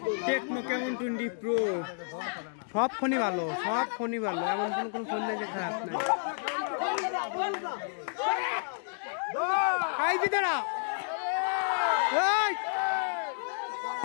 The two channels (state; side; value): silent; right; digital silence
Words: টেকনো কেমন 20 প্রো সব ফোনই ভালো, সব ফোনই ভালো, এমন কোনো ফোন নেই যে খারাপ নাই।